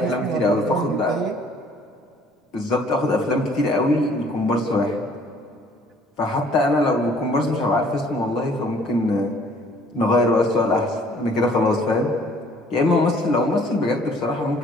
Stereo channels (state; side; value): normal; both; correlation 0.58